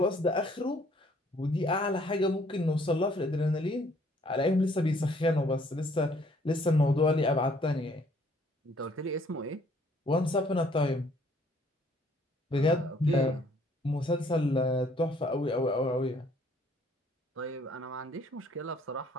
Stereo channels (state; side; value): normal; both; correlation 0.62